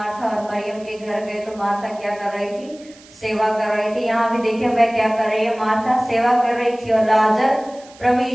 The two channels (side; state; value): right; noise; hiss, 24 dB below the sound